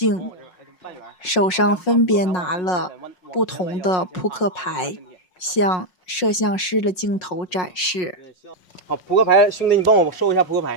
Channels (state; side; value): late; right; 5.5 ms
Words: 手上分别拿了不同的扑克牌，向摄像师的镜头展示。好，扑克牌，兄弟，你帮我收一下扑克